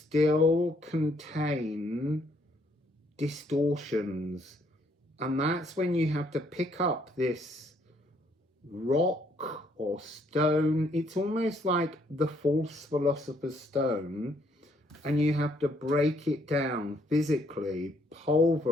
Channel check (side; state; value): both; normal; correlation 0.68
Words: contain distortions. And that's when you have to pick up this rock or stone. It's almost like the false philosopher's stone, and you have to break it down physically,